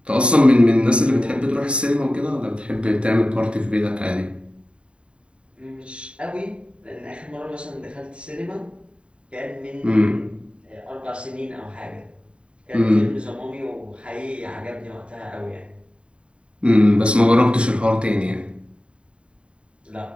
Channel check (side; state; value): left; late; 0.057 ms